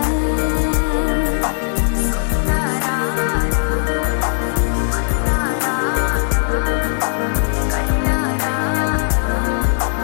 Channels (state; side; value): silent; right; digital silence